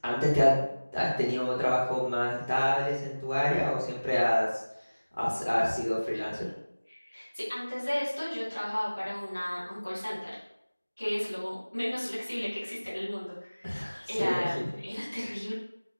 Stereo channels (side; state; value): both; inverted; correlation -1.00